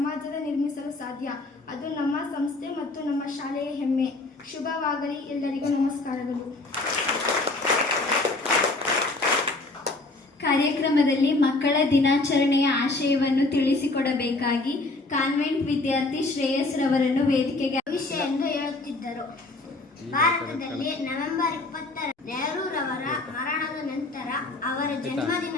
ನಿರ್ಮಿಸಲು ಸಾಧ್ಯ. ಅದು ನಮ್ಮ ಸಂಸ್ಥೆ ಮತ್ತು ನಮ್ಮ ಶಾಲೆಯ ಹೆಮ್ಮೆ. ಶುಭವಾಗಲಿ. ಎಲ್ಲರಿಗೂ ನಮಸ್ಕಾರಗಳು. ಕಾರ್ಯಕ್ರಮದಲ್ಲಿ ಮಕ್ಕಳ ದಿನಾಚರಣೆಯ ಆಶಯವನ್ನು ತಿಳಿಸಿಕೊಡಬೇಕಾಗಿ ಕಾನ್ವೆಂಟ್ ವಿದ್ಯಾರ್ಥಿ ಶ್ರೇಯಸ್ ರವರನ್ನು ವೇದಿಕೆಗೆ ವಿಷಯ ಎಂದು ಹೇಳುತ್ತಿದ್ದರು. ಭಾರತದಲ್ಲಿ ನವೆಂಬರ್ 20 ನೆಹರೂರವರ ಮರಣದ ನಂತರ ಅವರ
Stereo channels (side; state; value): right; quieter; 3.1 dB